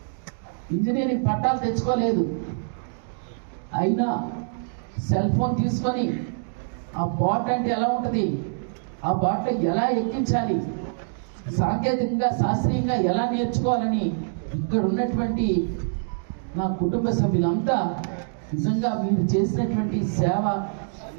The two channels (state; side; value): silent; left; digital silence